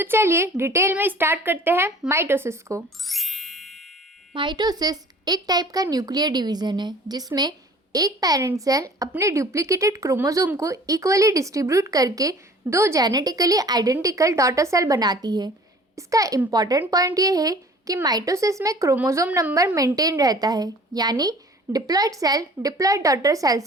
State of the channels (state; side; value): normal; both; correlation 0.48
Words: चलिए डिटेल में स्टार्ट करते हैं माइटोसिस को। माइटोसिस एक टाइप का न्यूक्लियर डिवीजन है जिसमें एक पेरेंट सेल अपने डुप्लीकेटेड क्रोमोसोम को इक्वली डिस्ट्रीब्यूट करके दो जेनेटिकली आइडेंटिकल डॉटर सेल बनाती है। इसका इम्पॉर्टेंट पॉइंट ये है कि माइटोसिस में क्रोमोसोम नंबर मेंटेन रहता है, यानी diploid cell diploid daughter